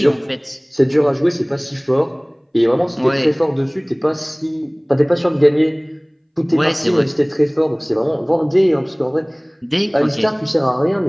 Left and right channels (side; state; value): both; identical; correlation 1.00